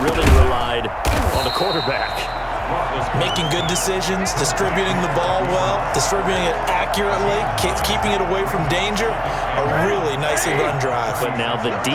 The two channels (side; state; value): both; identical; correlation 1.00